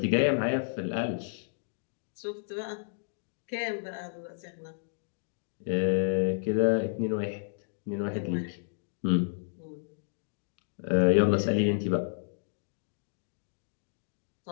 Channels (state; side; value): silent; right; digital silence